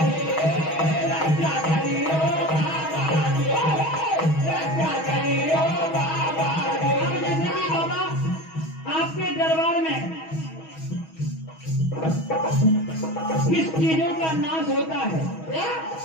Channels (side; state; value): right; late; 6.2 ms